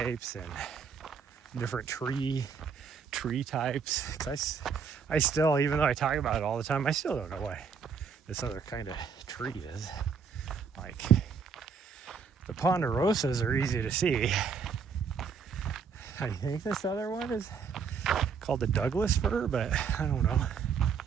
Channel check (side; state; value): left; quieter; 6.0 dB